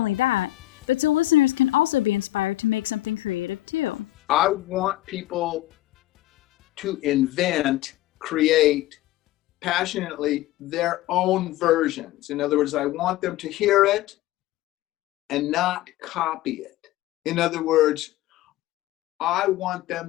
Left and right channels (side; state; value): right; quieter; 15.9 dB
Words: that, but so listeners can also be inspired to make something creative too. I want people to invent, create passionately their own versions. In other words, I want them to hear it and not copy it. In other words, I want